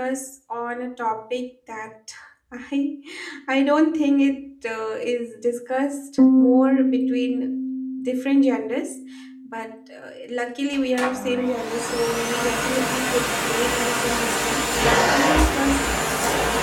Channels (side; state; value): both; identical; correlation 1.00